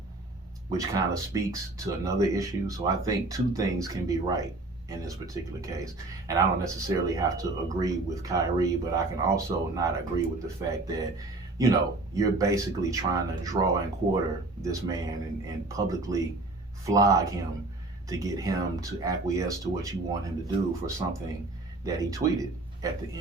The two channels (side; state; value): left; quieter; 3.1 dB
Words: which kind of speaks to another issue. So I think two things can be right in this particular case. And I don't necessarily have to agree with Kyrie, but I can also not agree with the fact that, you're basically trying to draw and quarter this man and publicly flog him to get him to acquiesce to what you want him to do for something that he tweeted at the